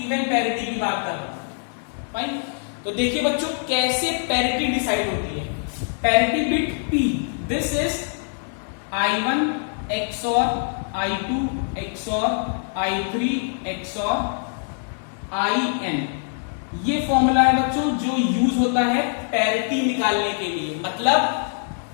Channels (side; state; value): right; silent; 63 dB below the other